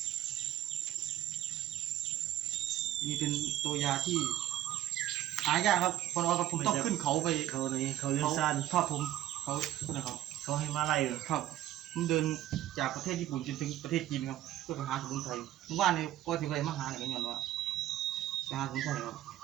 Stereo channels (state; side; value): quieter; left; 13.4 dB